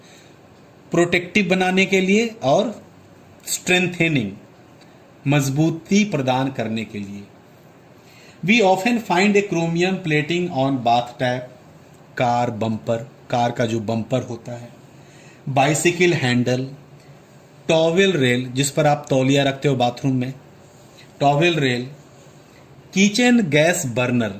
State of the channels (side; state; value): both; identical; correlation 1.00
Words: प्रोटेक्टिव बनाने के लिए और स्ट्रेंथेनिंग, मजबूती प्रदान करने के लिए। We often find a chromium plating on bath tap, car bumper, car का जो बम्पर होता है, बाइसिकल हैंडल, टॉवेल रेल जिस पर आप तौलिया रखते हो बाथरूम में, towel rail, kitchen gas burner,